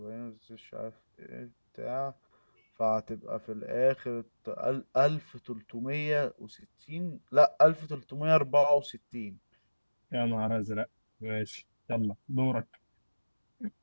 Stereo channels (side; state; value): both; inverted; correlation -1.00